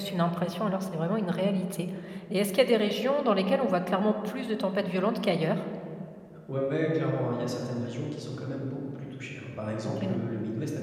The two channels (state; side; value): identical; both; correlation 1.00